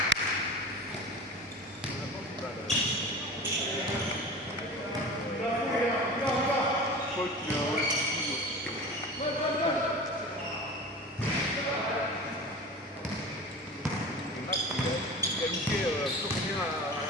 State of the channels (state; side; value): normal; both; correlation 0.34